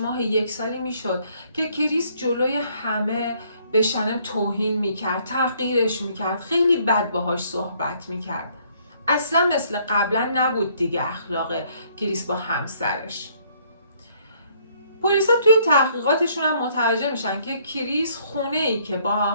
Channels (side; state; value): both; inverted; correlation -0.64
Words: 1 سالی میشد که کریس جلوی همه به شنم توهین میکرد، تحقیرش میکرد، خیلی بد باهاش صحبت میکرد. اصلا مثل قبلا نبود دیگه اخلاق کریس با همسرش. پلیسا توی تحقیقاتشون هم متوجه میشن که کریس خونه ای که با